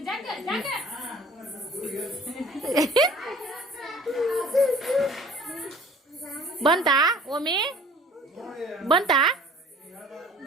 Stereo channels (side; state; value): both; normal; correlation 0.49